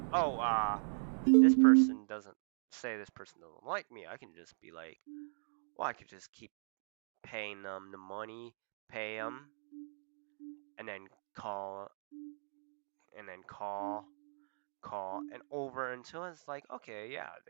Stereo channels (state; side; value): silent; left; digital silence